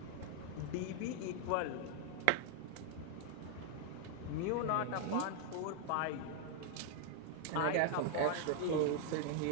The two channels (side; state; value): both; different; correlation 0.00